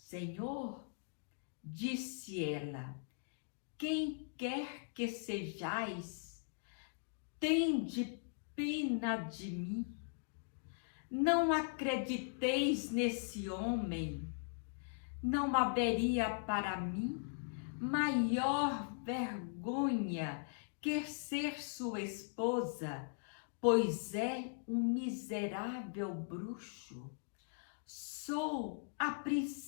disse ela, quem quer que sejais, tende pena de mim. Não acrediteis nesse homem. Não haveria para mim maior vergonha que ser sua esposa, pois é um miserável bruxo. Sou a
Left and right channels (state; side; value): silent; right; digital silence